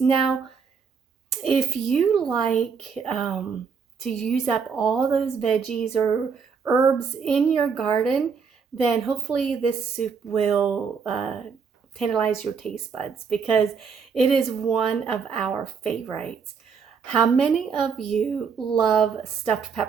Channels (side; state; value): left; quieter; 5.9 dB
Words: if you like to use up all those veggies or herbs in your garden, then hopefully this soup will tantalize your taste buds because it is one of our favorites. How many of you love stuffed